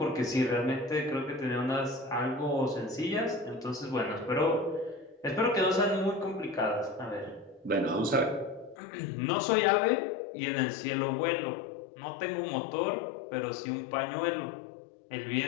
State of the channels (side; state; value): right; drops out; at 8.8 s